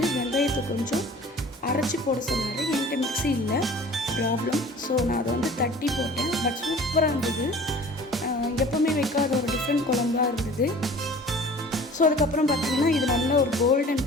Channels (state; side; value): normal; both; correlation 0.45